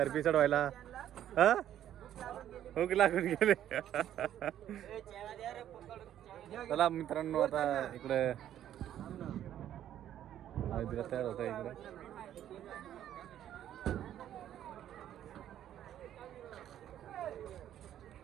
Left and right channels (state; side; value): quieter; left; 11.2 dB